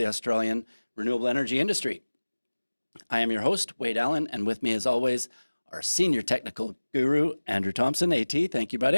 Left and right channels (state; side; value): inverted; both; correlation -1.00